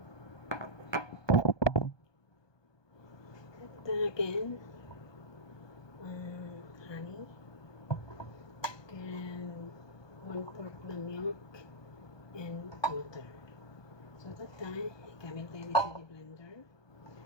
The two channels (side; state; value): right; late; 1.2 ms